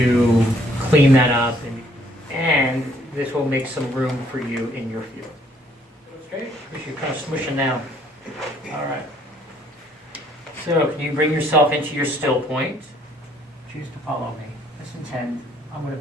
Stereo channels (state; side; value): normal; both; correlation 0.64